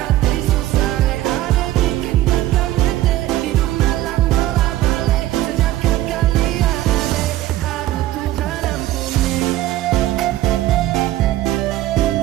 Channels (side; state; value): left; quieter; 14.9 dB